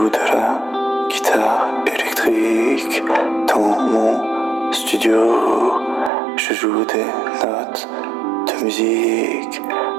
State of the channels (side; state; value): left; drops out; at 6.1 s